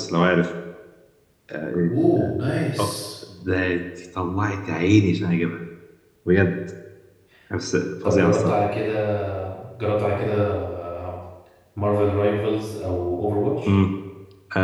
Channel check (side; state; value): both; identical; correlation 1.00